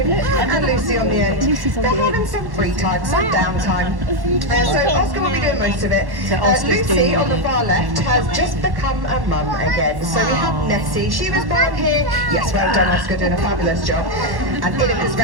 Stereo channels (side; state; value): left; late; 1.1 ms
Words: and Lucy on the end. They're having some free time, some downtime. So Oscar will be doing most of it. Lucy on the far left has just become a mum again. So we have Nessie. She was born here. Yes, well done, Oscar, doing a fabulous job. And Inika's